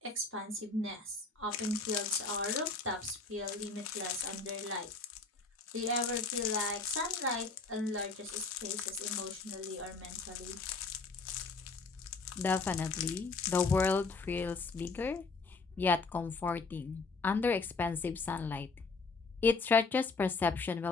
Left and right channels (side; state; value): right; quieter; 4.1 dB